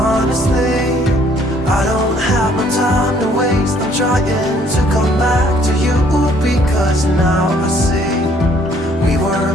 I don't have no time to waste. I'm trying to come back to you, because now I see we were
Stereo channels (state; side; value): normal; both; correlation 0.62